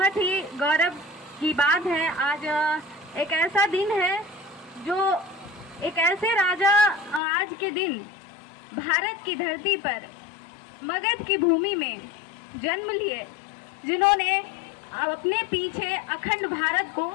ही गौरव की बात है। आज एक ऐसा दिन है जो एक ऐसे राजा आज के दिन भारत की धरती पर मगध की भूमि में जन्म लिए, जिन्होंने अपने पीछे अखंड भारत को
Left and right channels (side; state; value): right; drops out; at 7.2 s